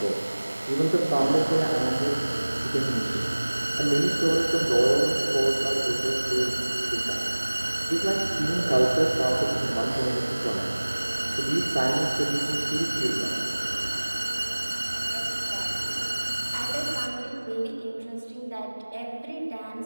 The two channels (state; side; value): inverted; both; correlation -1.00